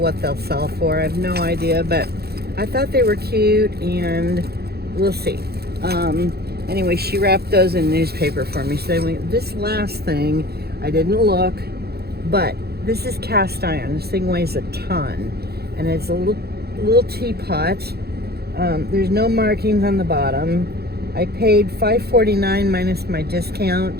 they'll sell for. I have no idea, but I thought they were cute, and we'll see. Anyway, she wrapped those in newspaper for me. So this last thing, I didn't look, but this is cast iron. This thing weighs a ton, and it's a little teapot. There's no markings on the bottom. I paid $5.49 minus my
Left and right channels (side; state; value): left; late; 0.46 ms